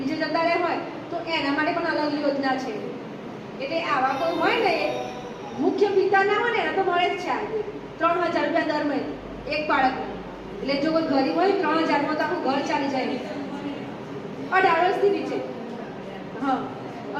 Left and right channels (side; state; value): both; identical; correlation 1.00